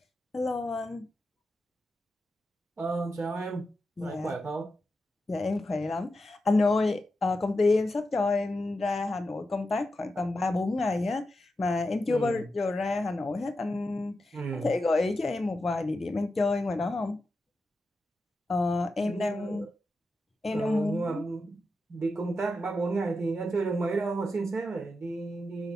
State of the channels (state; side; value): normal; both; correlation 0.89